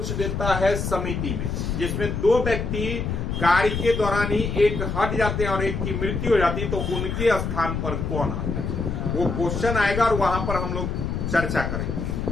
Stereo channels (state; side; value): noise; left; rumble, 2 dB below the sound